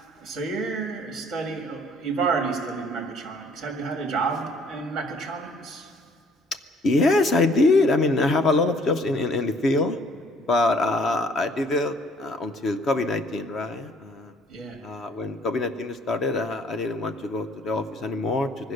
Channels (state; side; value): normal; both; correlation 0.59